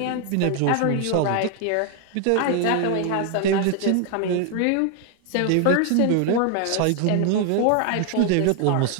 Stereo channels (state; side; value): different; both; correlation 0.00